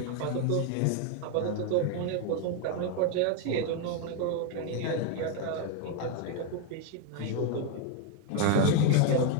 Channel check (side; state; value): both; different; correlation 0.01